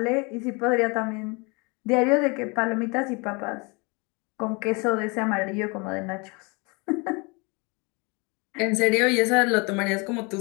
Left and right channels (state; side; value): quieter; right; 29.2 dB